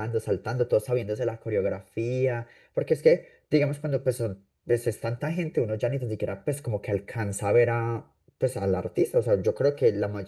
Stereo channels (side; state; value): both; identical; correlation 1.00